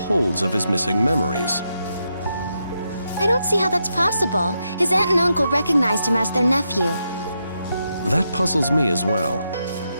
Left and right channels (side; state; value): both; inverted; correlation -0.84